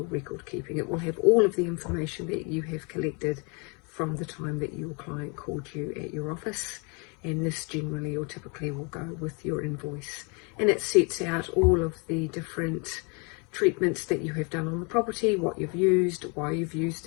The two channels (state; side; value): quieter; right; 33.4 dB